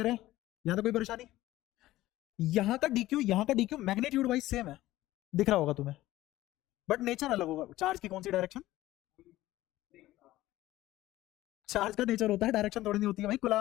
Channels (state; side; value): quieter; right; 16.1 dB